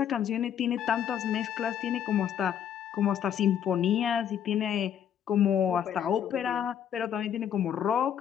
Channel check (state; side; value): quieter; right; 9.2 dB